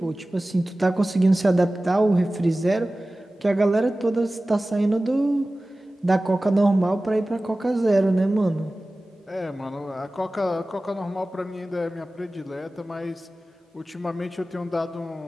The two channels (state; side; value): normal; both; correlation 0.97